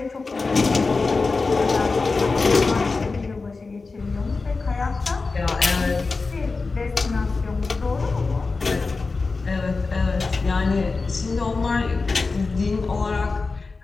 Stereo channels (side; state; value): right; quieter; 4.0 dB